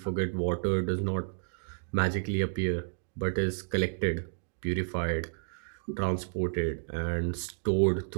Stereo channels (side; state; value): left; silent; digital silence